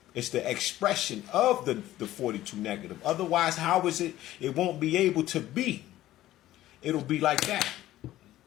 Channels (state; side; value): quieter; right; 14.5 dB